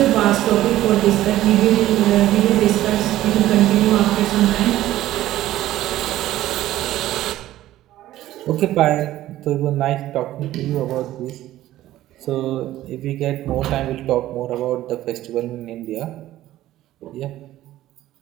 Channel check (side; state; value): left; quieter; 14.4 dB